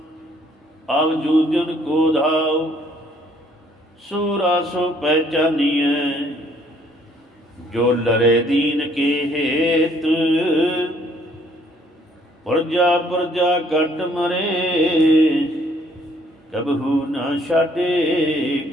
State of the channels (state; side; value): normal; both; correlation 0.64